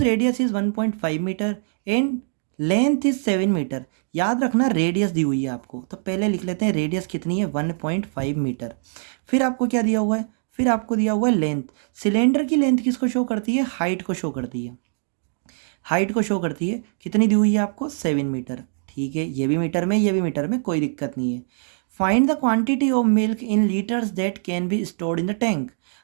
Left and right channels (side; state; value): left; silent; digital silence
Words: radius is 1.5 metre and length is 7 metre. याद रखना रेडियस दी हुई है आपको, तो पहले लिख लेते हैं रेडियस कितनी है 1.5 मीटर। फिर आपको क्या दिया हुआ है, फिर आपको दिया हुआ है लेंथ। सिलेंडर की लेंथ किसको शो करती है, हाइट को शो करती है, हाइट को शो करती है, कितनी दी हुई है आपको 7 मीटर। ठीक है, ये भी मीटर में, ये भी मीटर में, कोई दिक्कत नहीं है। Find the quantity of milk in litres that can be stored in the tank.